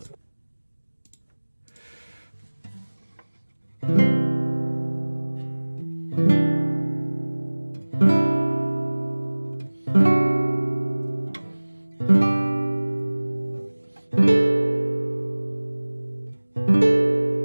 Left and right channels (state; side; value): inverted; both; correlation -1.00